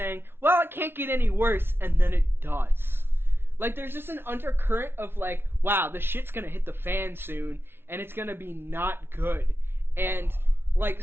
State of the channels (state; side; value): late; left; 0.11 ms